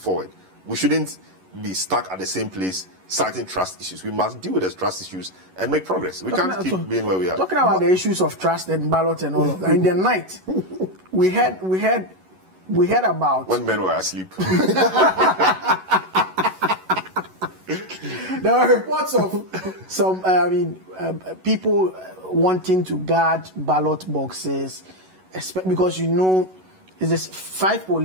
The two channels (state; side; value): late; left; 11 ms